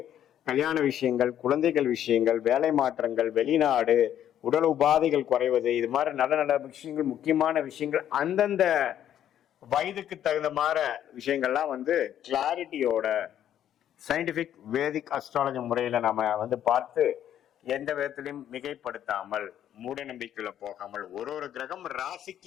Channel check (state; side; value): quieter; right; 10.6 dB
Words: கல்யாண விஷயங்கள், குழந்தைகள் விஷயங்கள், வேலை மாற்றங்கள், வெளிநாடு, உடல் உபாதைகள் குறைவது, இது மாதிரி நல்ல நல்ல விஷயங்கள், முக்கியமான விஷயங்கள் அந்தந்த வயதுக்கு தகுந்த மாதிரி விஷயங்கள்லாம் வந்து கிளாரிட்டியோட சயின்டிபிக் வேதிக் அஸ்ட்ராலஜி முறையில நம்ம வந்து பார்த்து எந்த விதத்திலையும் மிகைப்படுத்தாமல் மூட நம்பிக்கையில போகாமல் ஒரு கிரகம்